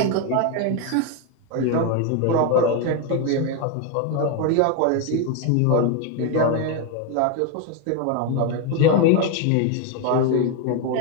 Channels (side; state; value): both; different; correlation 0.02